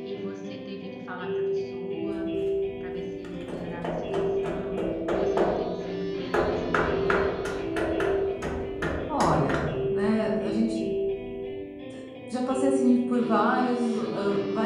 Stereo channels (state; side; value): identical; both; correlation 1.00